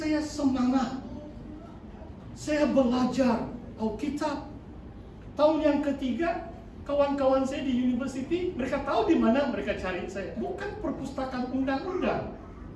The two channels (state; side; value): identical; both; correlation 1.00